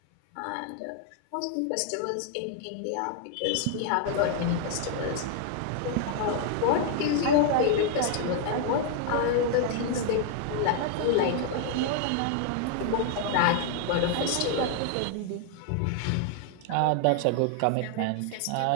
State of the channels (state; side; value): different; both; correlation 0.00